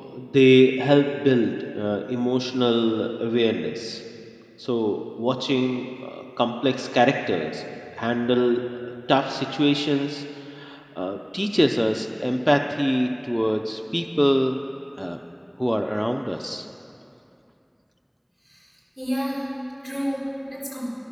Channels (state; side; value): identical; both; correlation 1.00